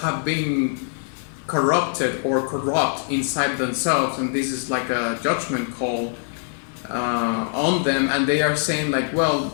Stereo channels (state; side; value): silent; right; 62 dB below the other